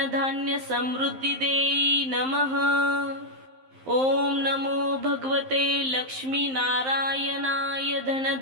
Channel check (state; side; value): late; left; 11 ms